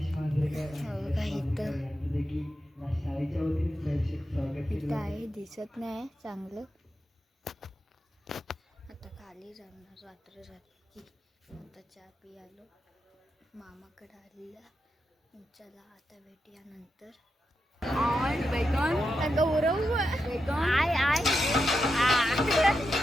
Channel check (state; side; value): normal; both; correlation 0.87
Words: इथं आहे दिसत नाही चांगलं. आता खाली जाणार रात्र झाली. आता चहा पियालो मामाकडे आलेला. चला आता भेटूया नंतर. गौरव आय आय